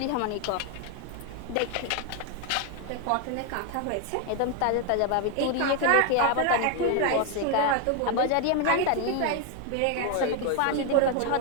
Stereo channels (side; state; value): both; different; correlation 0.01